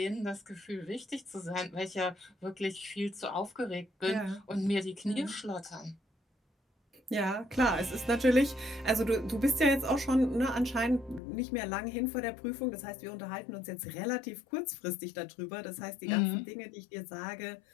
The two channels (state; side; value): drops out; right; at 11.2 s